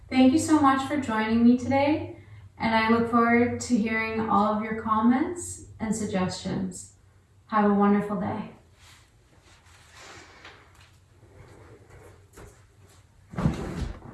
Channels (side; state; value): both; identical; correlation 1.00